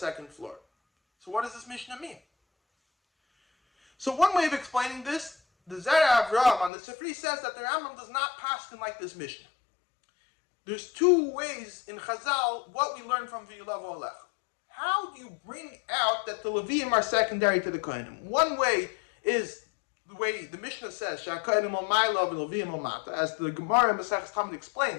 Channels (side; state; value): right; drops out; at 6.7 s